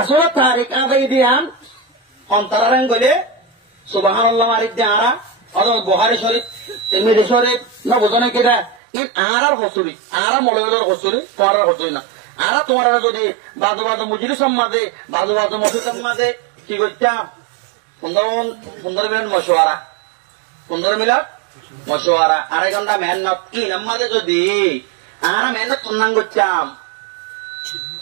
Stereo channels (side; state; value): left; drops out; at 8.8 s